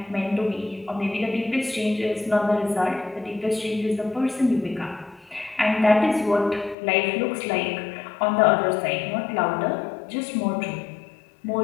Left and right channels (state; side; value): drops out; right; at 6.8 s